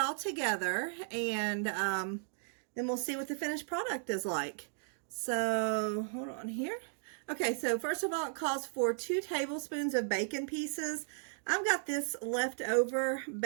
together, and then we'll see what the finished product is like. So hold on here. Okay, so first of all, it calls for 2 tablespoons of bacon pieces. I've got this leftover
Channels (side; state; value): left; silent; digital silence